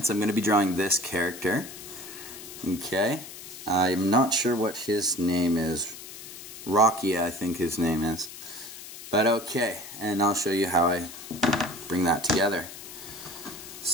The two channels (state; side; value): noise; left; hiss, 13 dB below the sound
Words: I'm going to be drawing this character. Okay, I'm not sure what his name is. Rocky, I think his name is. But okay, and I'll show you how I bring that together.